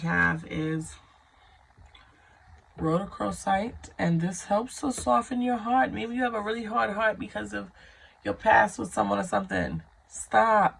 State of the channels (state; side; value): identical; both; correlation 1.00